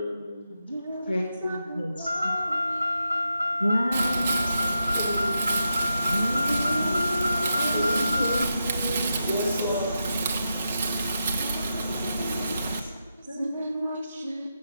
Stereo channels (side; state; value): both; inverted; correlation -0.87